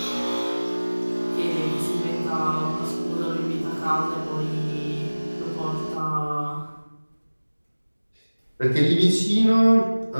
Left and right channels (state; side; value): inverted; both; correlation -1.00